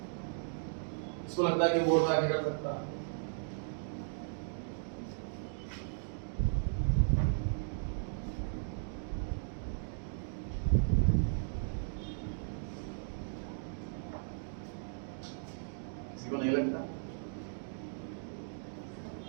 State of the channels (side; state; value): left; silent; digital silence